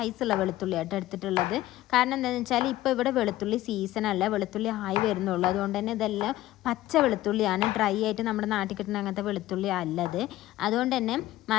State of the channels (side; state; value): right; quieter; 15.6 dB